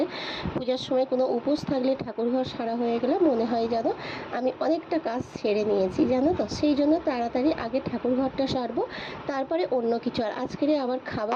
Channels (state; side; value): identical; both; correlation 1.00